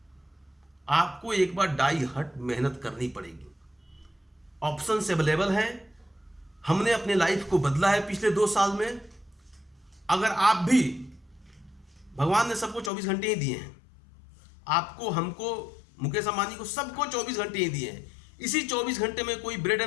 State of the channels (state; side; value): drops out; right; at 12.9 s